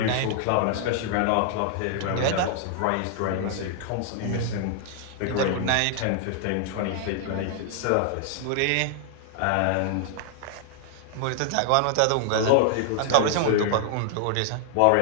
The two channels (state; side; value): different; both; correlation 0.00